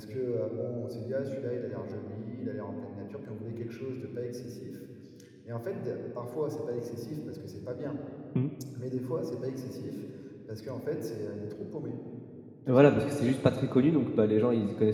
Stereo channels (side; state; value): both; identical; correlation 1.00